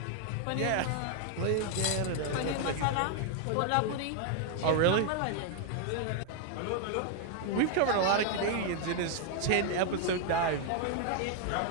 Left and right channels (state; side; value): different; both; correlation 0.00